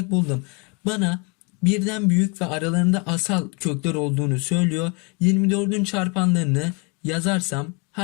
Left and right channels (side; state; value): right; quieter; 32.1 dB